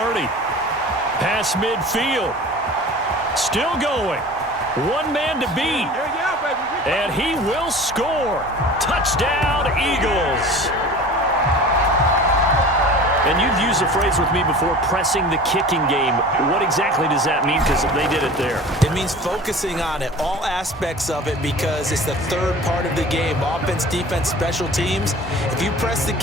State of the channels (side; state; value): both; normal; correlation 0.40